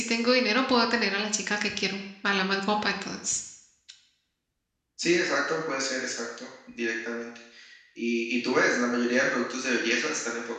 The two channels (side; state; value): both; identical; correlation 1.00